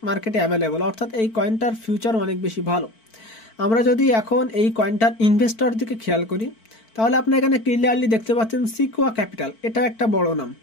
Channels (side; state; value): right; late; 4.5 ms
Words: মার্কেটে অ্যাভেলেবল। অর্থাৎ এই কয়েনটার ফিউচার অনেক বেশি ভালো। আমরা যদি এখন এই কয়েনটার ইনভেস্টর দিকে খেয়াল করি তাহলে আপনি এখানে ক্লিয়ারলি দেখতে পাচ্ছেন সিকুয়া ক্যাপিটাল, এটা একটা বড় নাম,